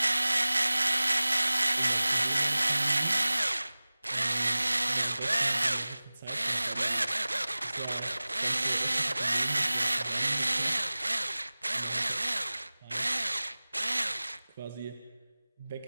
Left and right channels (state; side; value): inverted; both; correlation -0.98